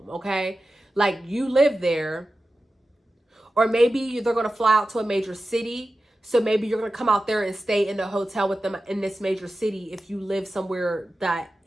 okay? Like, you live there, or maybe they're going to fly out to a major city. So maybe you're going to come out there and stay in the hotel with them in this major city if you live somewhere that,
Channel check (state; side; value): normal; both; correlation 0.93